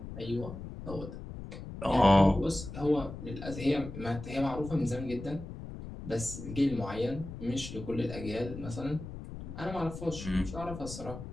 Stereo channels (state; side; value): noise; left; rumble, 10 dB below the sound